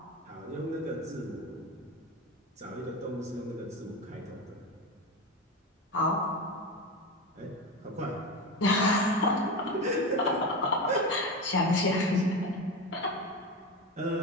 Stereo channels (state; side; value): normal; both; correlation 0.21